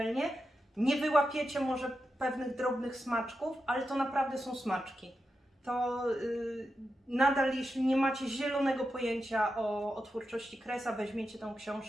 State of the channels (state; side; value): normal; both; correlation 0.88